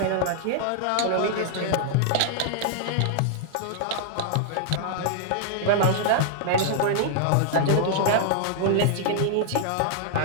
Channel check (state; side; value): different; both; correlation -0.01